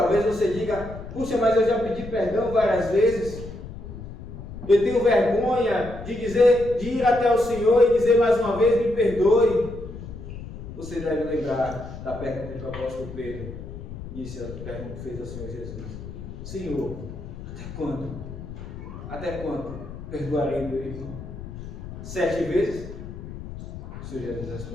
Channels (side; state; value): left; noise; rumble, 11 dB below the sound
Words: você diga: puxa, mas eu já pedi perdão várias vezes. Eu tenho vergonha de ir até o Senhor e dizer mais uma vez: me perdoe. Você deve lembrar da pergunta que o apóstolo Pedro fez ao Senhor Jesus: Senhor, até quando? Até quando perdoarei meu irmão? 7 vezes? O Senhor Jesus